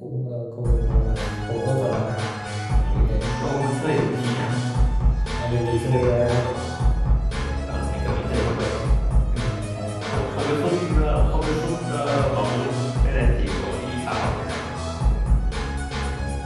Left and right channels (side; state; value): both; identical; correlation 1.00